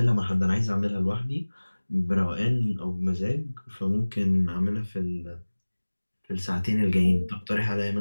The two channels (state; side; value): inverted; both; correlation -1.00